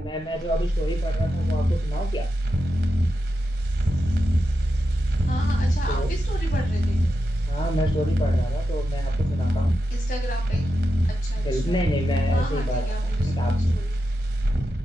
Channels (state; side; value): normal; both; correlation 0.88